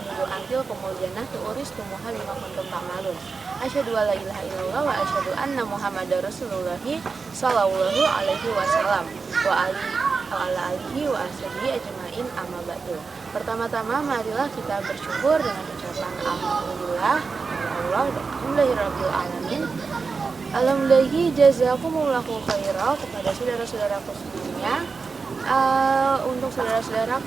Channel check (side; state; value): left; quieter; 4.7 dB